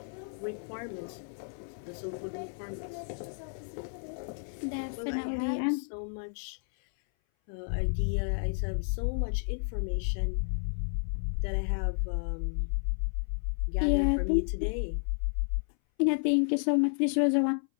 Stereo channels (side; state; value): right; silent; 57 dB below the other